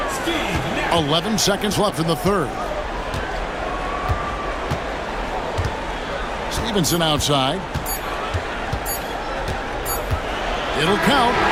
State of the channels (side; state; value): both; identical; correlation 1.00